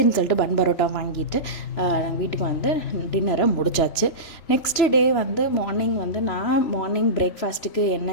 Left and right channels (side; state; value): right; late; 3.0 ms